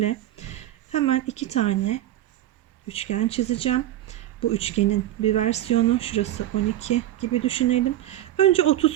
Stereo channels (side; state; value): left; quieter; 13.5 dB